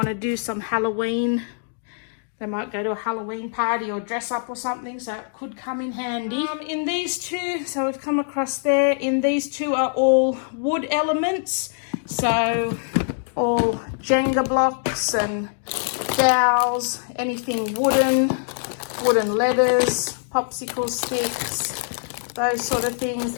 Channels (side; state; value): right; silent; digital silence